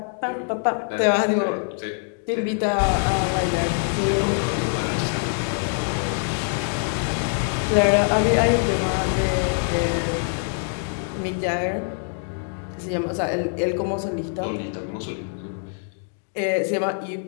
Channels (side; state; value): right; silent; 63 dB below the other